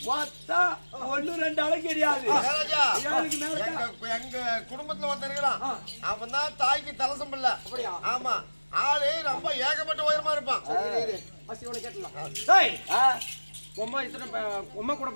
மொத்தம் 1-2 அளவு கிடையாது. மகாராஜா, எங்க குடும்பத்துல ஒருத்தர் இருக்கிறான். அவன் தான் தாய்க்கு தலசம் இல்ல. ஆமா, ஆளு ரொம்ப ஏகப்பட்ட உயரமா இருப்பான். உமா கூட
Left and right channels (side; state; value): both; inverted; correlation -1.00